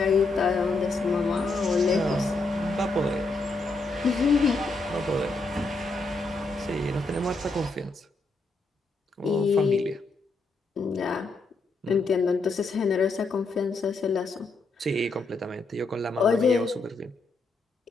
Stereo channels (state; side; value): quieter; right; 3.4 dB